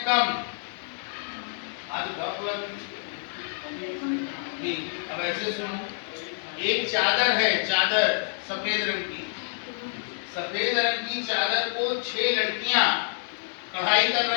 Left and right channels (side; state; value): right; silent; 60 dB below the other